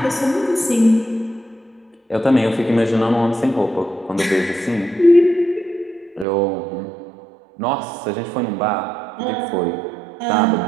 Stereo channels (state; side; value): drops out; left; at 6.2 s